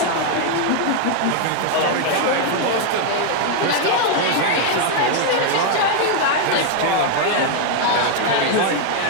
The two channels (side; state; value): both; different; correlation 0.00